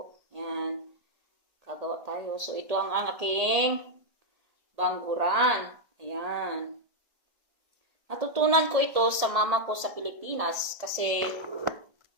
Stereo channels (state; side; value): late; left; 1.7 ms